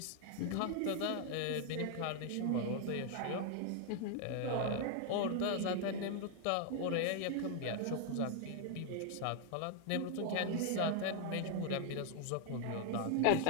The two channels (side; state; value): both; different; correlation 0.00